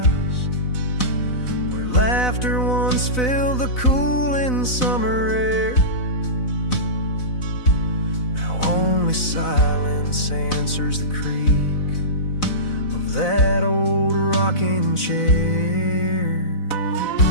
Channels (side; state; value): right; late; 4.0 ms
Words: where laughter once filled the cooling summer air. Now only silence answers the creak of that old rocking chair.